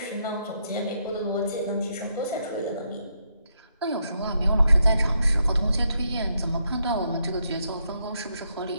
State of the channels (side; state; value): both; inverted; correlation -0.79